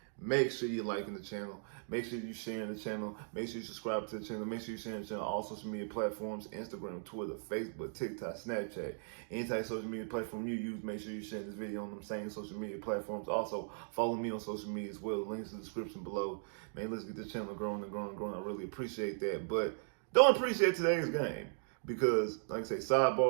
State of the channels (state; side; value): silent; left; digital silence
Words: make sure you're liking the channel. Make sure you're sharing the channel. Make sure you subscribe to the channel. Make sure you're sharing the channel on all social media platforms: Instagram, Twitter, Facebook, TikTok, Snapchat. Any type of social media platform you use, make sure you share this video on them same social media platforms. Also, follow me on social media as well. Links in the description below. Man, let's get this channel growing and growing and growing. I really appreciate that. But don't appreciate today's game because, like I say,